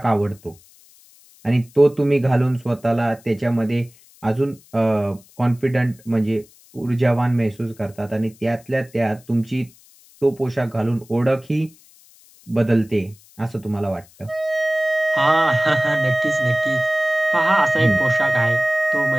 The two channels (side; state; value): left; noise; hiss, 27 dB below the sound